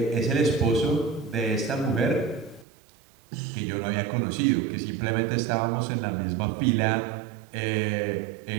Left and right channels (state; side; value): drops out; left; at 2.7 s